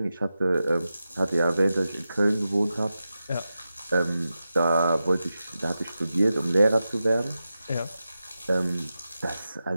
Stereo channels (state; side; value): inverted; both; correlation -0.91